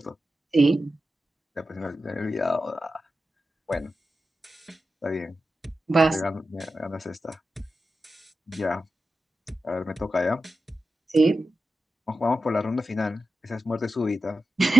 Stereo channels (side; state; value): both; normal; correlation 0.92